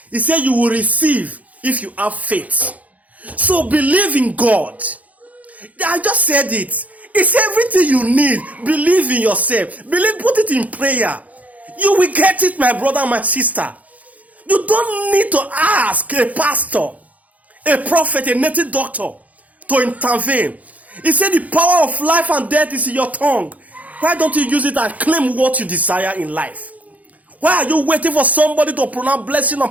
he said you will receive if you have faith. So believe in God. I just said it. It's everything you need. Believe in yourself. Believe, put it in prayer. You will get it, my brother, my sister. You don't need to ask a pastor, a prophet, a native doctor to intervene. He said the power of life and death is in your tongue. Why don't you use it and claim what you desire in life? Why are you waiting for somebody to pronounce blessing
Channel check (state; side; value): late; left; 0.073 ms